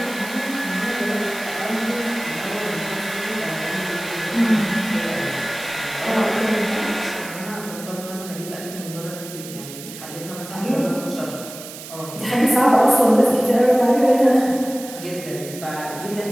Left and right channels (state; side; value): noise; right; hiss, 13 dB below the sound